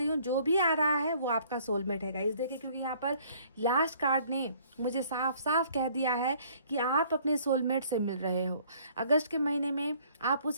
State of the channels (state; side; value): inverted; both; correlation -0.58